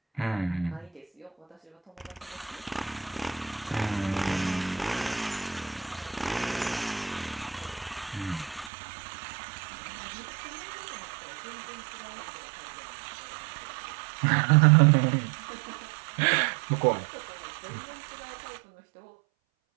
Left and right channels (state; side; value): drops out; left; at 8.7 s